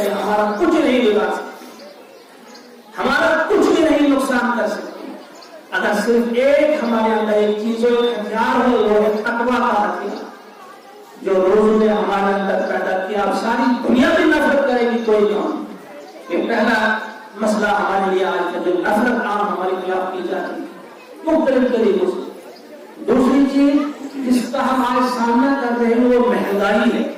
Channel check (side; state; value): both; identical; correlation 1.00